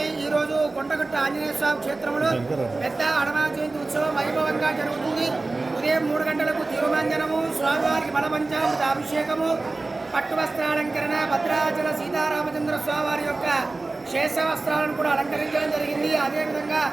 ఈరోజు కొండగట్టు ఆంజనేయ స్వామి క్షేత్రంలో పెద్ద హనుమాన్ జయంతి ఉత్సవం వైభవంగా జరుగుతుంది. ఉదయం 3 గంటలకు తిరుమంజనము, స్వామివారికి బలపంచామృత అభిషేకము, పట్టు వస్త్రాలంకరణ, భద్రాచల సీతారామచంద్ర స్వామివారి యొక్క శేష వస్త్రాలను కూడా అలంకరించడం జరిగింది. అదేవిధంగా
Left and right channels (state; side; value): quieter; left; 3.3 dB